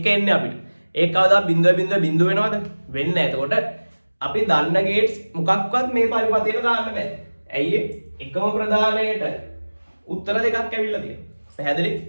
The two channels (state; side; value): inverted; both; correlation -1.00